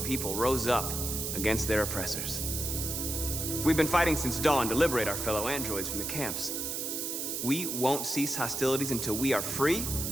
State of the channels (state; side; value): noise; right; hiss, 3 dB below the sound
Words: people rose up against their oppressors. We've been fighting since dawn to liberate our fellow androids from the camps. We won't cease hostilities until we are free